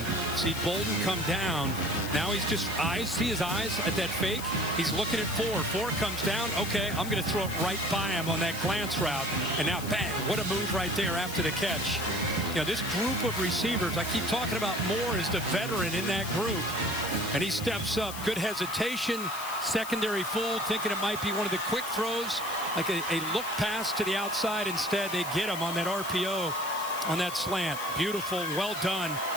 see Bolden come down. Now he's just see his eyes at that fake. He's looking at 4 comes down. Okay, I'm going to throw it right by him on that glance route, and now bang, what a move right there after the catch. You know, this group of receivers, I keep talking about Moore as the veteran in that group, and he steps up. Good hesitation, secondary fool, thinking it might be one of the quick throws, like a look pass to the outside. Instead, they get him on that RPO, on that slant. Beautiful, well done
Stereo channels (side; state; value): left; noise; hiss, 10 dB below the sound